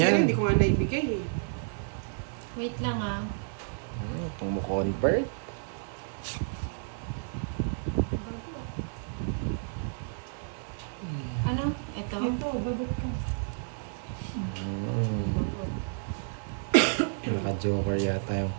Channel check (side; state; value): left; silent; digital silence